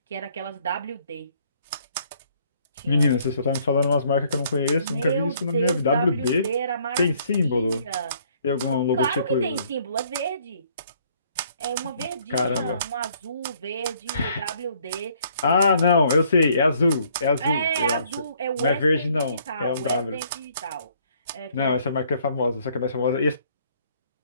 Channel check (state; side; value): inverted; both; correlation -0.64